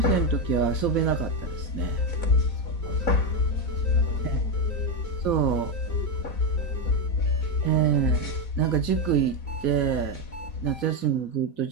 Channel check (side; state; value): right; late; 4.2 ms